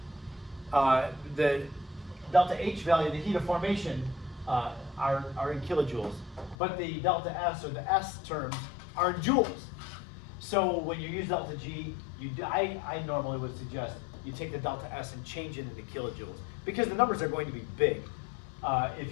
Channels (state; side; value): drops out; right; at 6.6 s